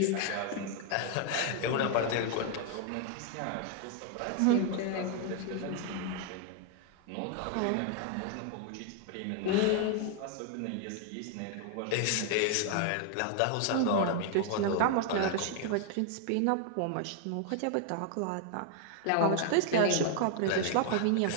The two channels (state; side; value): different; both; correlation 0.00